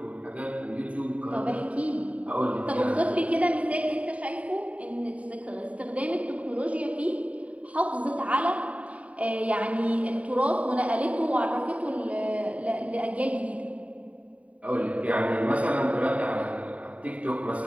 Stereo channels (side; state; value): left; late; 0.067 ms